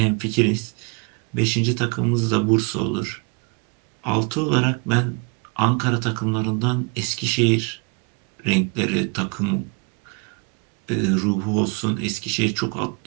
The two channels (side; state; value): left; quieter; 32.5 dB